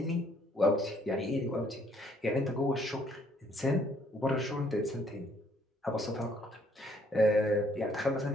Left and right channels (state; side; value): normal; both; correlation 0.65